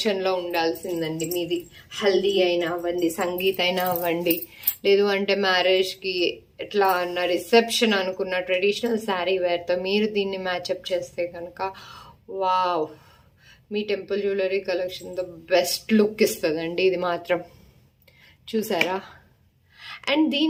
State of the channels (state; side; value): identical; both; correlation 1.00